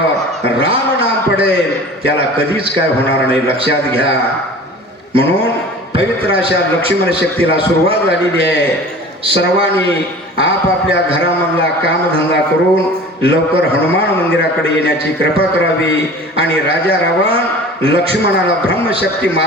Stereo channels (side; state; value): both; normal; correlation 0.41